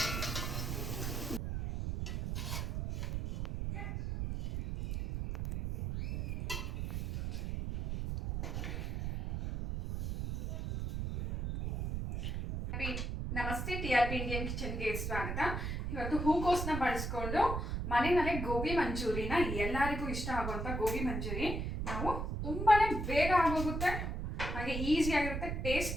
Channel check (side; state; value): right; noise; rumble, 3 dB below the sound